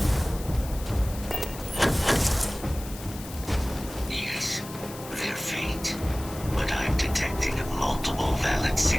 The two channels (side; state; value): left; noise; hiss, 14 dB below the sound